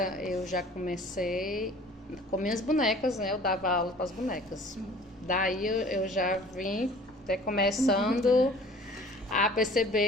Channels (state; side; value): normal; both; correlation 0.49